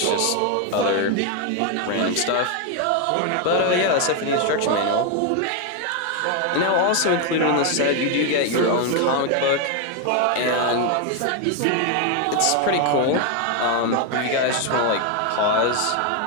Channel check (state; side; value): different; both; correlation 0.01